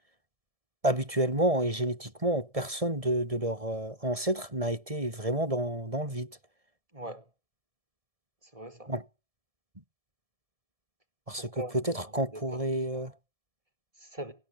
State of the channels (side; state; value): left; late; 1.7 ms